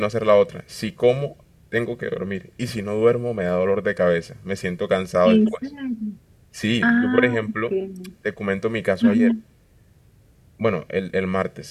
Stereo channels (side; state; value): both; identical; correlation 1.00